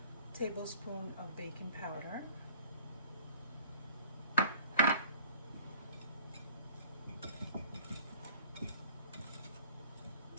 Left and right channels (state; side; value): inverted; both; correlation -0.50